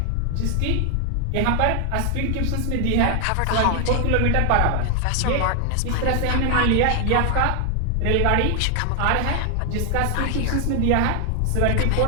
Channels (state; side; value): different; both; correlation 0.00